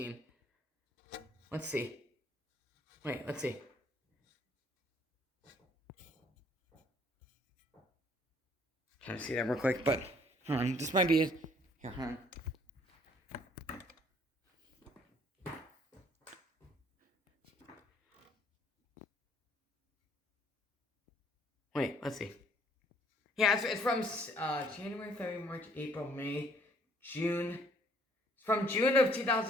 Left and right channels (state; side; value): normal; both; correlation 0.61